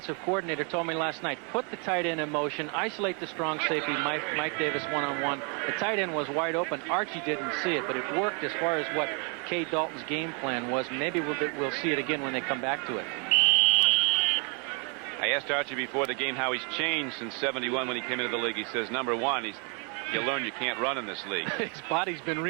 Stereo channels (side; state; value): left; quieter; 36.6 dB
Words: coordinator told me last night. Put the tight end in motion, isolate the strong safety, Mike Davis one-on-one. The tight end was wide open. Archie didn't see it, but it worked as far as what Kay Dalton's game plan was. Maybe we'll see it again when they come back to it. I asked Archie before the game how he's changed since '71 when he came into the league. He says, number 1, you learn you can't run in this league. His body's been